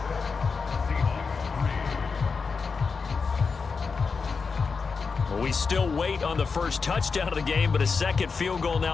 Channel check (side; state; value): right; quieter; 5.0 dB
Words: We still wait on the first touchdown of the game, but a second field goal